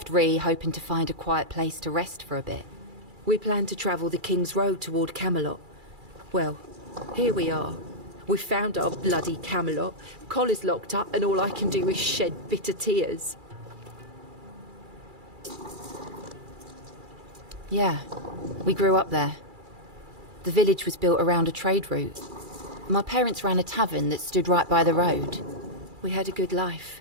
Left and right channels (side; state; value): left; late; 2.3 ms